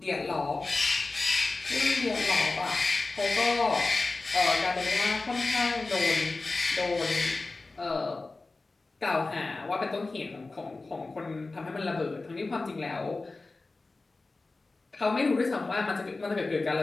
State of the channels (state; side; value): quieter; right; 3.4 dB